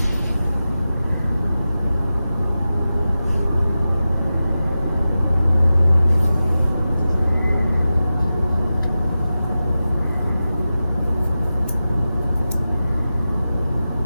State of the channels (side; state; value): both; inverted; correlation -0.93